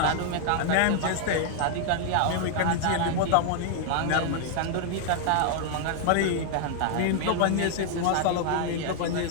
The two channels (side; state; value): both; different; correlation 0.00